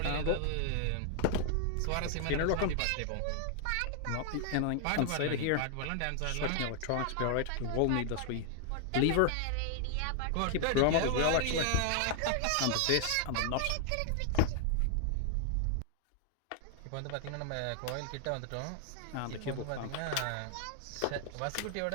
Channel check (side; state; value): both; different; correlation 0.00